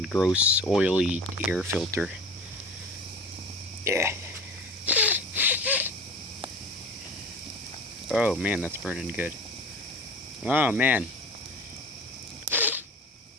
gross, oily air filter. Yeah. Oh man, that's burning good. Oh man.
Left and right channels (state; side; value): normal; both; correlation 0.36